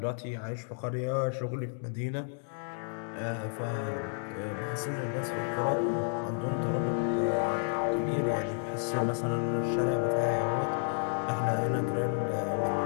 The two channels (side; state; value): right; silent; 57 dB below the other